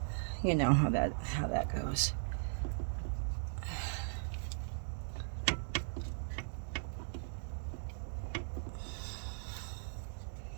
you know how that goes.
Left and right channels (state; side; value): silent; left; digital silence